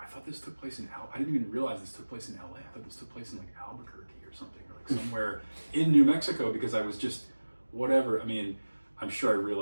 I thought this took place in I didn't even realize this took place in LA. I thought this took place in like Albuquerque or something, or like somewhere in New Mexico, because I was just whatever. I mean, I'm sure I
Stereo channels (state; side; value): inverted; both; correlation -1.00